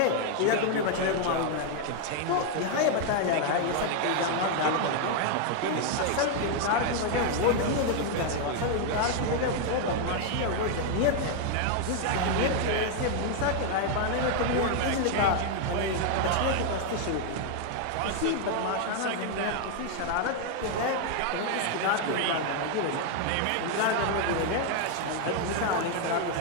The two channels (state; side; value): different; both; correlation 0.00